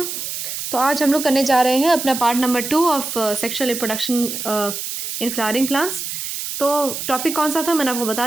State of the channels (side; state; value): right; noise; hiss, 5 dB below the sound